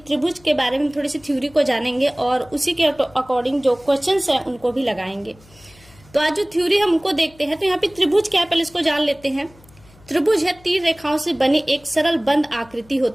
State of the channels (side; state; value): left; noise; hum, 27 dB below the sound